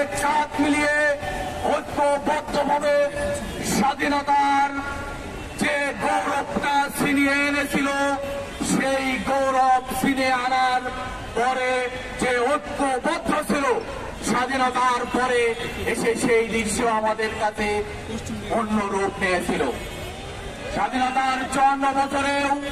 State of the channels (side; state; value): both; identical; correlation 1.00